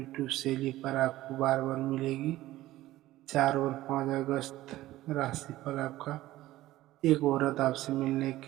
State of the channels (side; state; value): left; quieter; 15.9 dB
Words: शैली पर आपको बार बार मिलेगी। 4 और 5 अगस्त राशिफल आपका। एक औरत आपसे मिलने